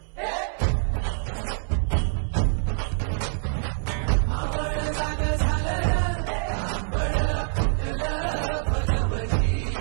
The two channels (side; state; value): left; silent; 61 dB below the other